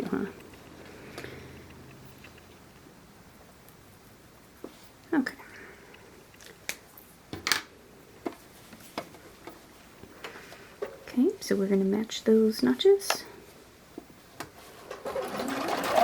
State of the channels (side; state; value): both; identical; correlation 1.00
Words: huh? Okay. Okay, so we're going to match those notches.